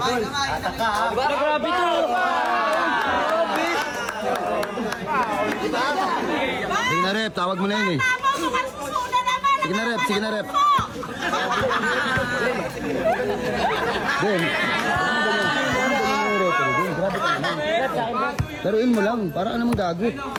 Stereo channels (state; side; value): identical; both; correlation 1.00